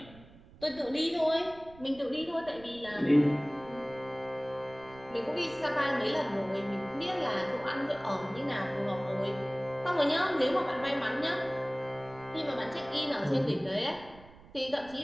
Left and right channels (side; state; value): right; noise; rumble, 21 dB below the sound